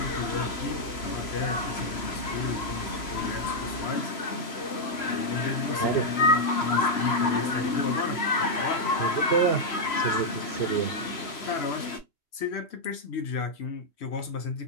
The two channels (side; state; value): right; late; 3.0 ms